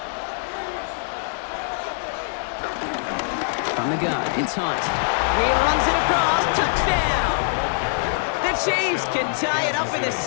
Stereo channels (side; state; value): right; silent; digital silence